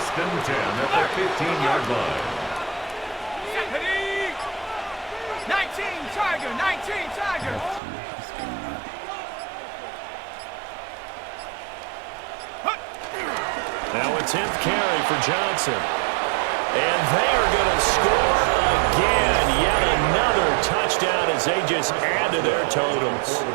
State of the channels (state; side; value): drops out; left; at 7.8 s